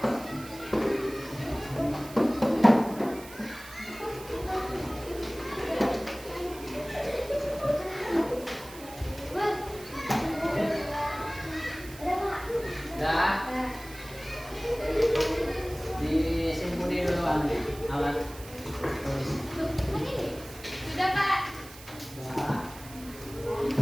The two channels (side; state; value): right; noise; hiss, 17 dB below the sound